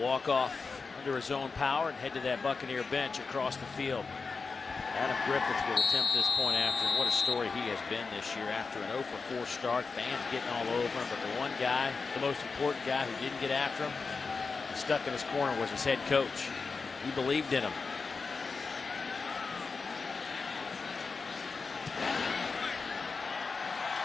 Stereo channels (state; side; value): quieter; right; 4.6 dB